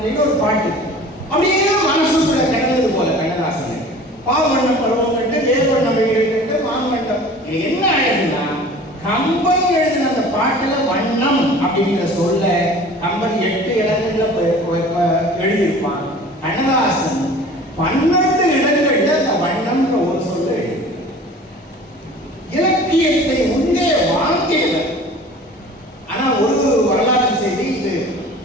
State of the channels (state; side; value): normal; both; correlation 0.44